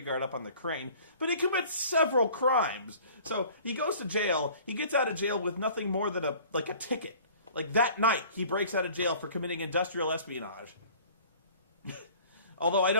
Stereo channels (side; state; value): both; inverted; correlation -0.49